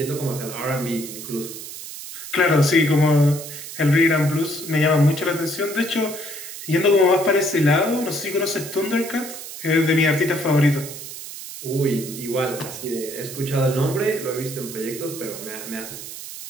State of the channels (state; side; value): noise; right; hiss, 11 dB below the sound